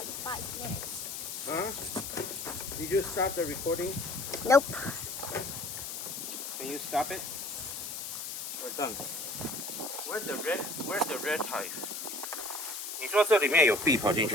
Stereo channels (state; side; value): noise; left; hiss, 6 dB below the sound